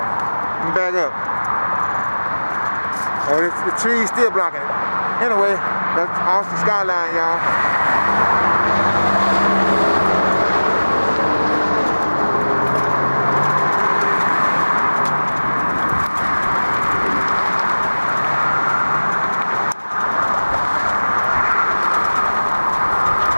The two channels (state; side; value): inverted; both; correlation -1.00